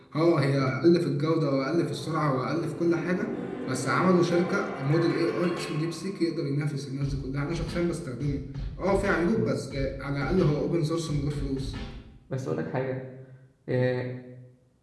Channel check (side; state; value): both; identical; correlation 1.00